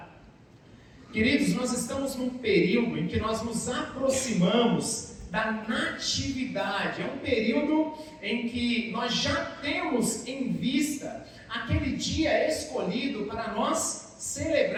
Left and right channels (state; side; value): identical; both; correlation 1.00